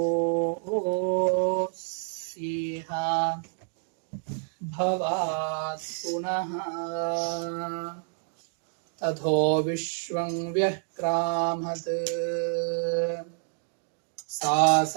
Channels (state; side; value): silent; left; digital silence